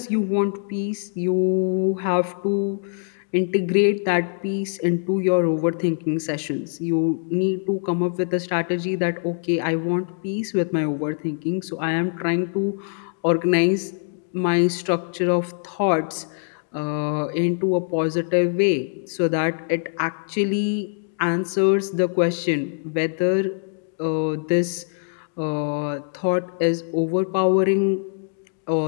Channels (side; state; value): right; silent; digital silence